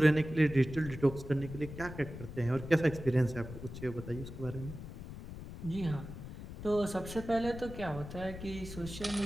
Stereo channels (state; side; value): noise; left; rumble, 11 dB below the sound